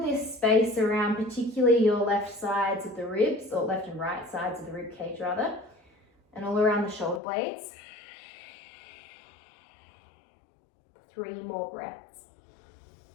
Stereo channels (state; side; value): drops out; right; at 7.2 s